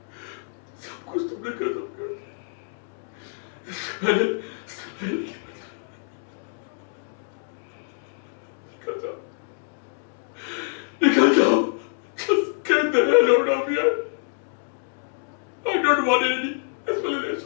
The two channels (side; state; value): right; silent; digital silence